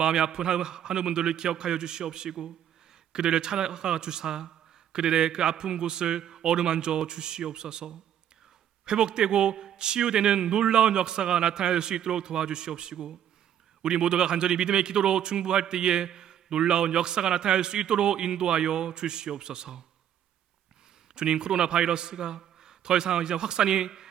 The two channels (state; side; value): quieter; left; 10.1 dB